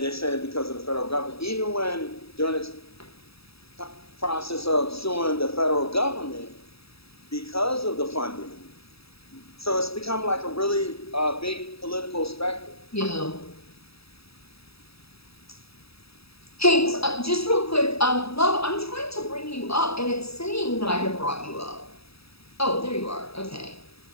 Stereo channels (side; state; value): right; late; 0.77 ms